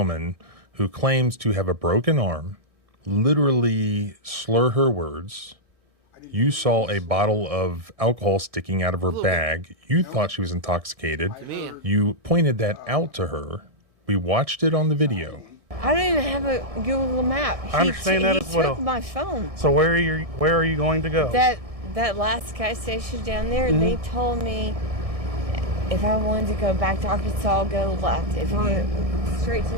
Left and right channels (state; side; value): late; left; 1.6 ms